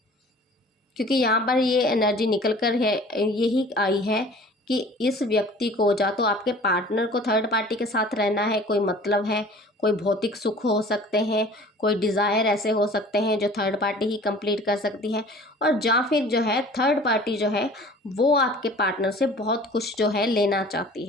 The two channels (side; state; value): both; normal; correlation 0.46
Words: क्योंकि यहाँ पर ये एनर्जी निकल कर है, यही आई है कि इस व्यक्ति को, या तो आपके पार्टनर को थर्ड पार्टी के साथ रहना है, कोई मतलब है, कोई भौतिक सुख हो सकते हैं, कोई डिज़ायर ऐसे हो सकते हैं जो थर्ड पार्टी ही कंप्लीट कर सकती है, और या फिर जो है थर्ड पार्टी जो है वो आपके पार्टनर से बहुत कुछ जो है लेना चाहती